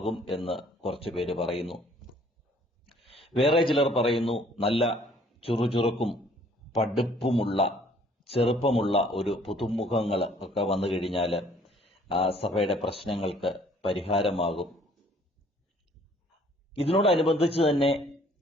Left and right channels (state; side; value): normal; both; correlation 0.59